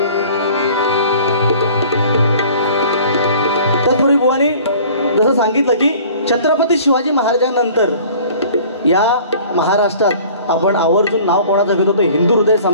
तत्पूर्वी बुवानी जसं सांगितलं की छत्रपती शिवाजी महाराजांनंतर या महाराष्ट्रात आपण आवर्जून नाव कोणाचं घेतो तो हिंदू हृदय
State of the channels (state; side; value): inverted; both; correlation -0.48